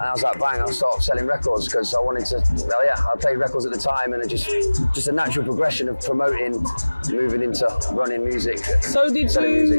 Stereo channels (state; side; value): inverted; both; correlation -1.00